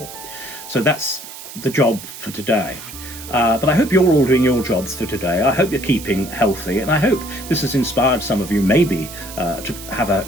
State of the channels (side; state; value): right; noise; hiss, 13 dB below the sound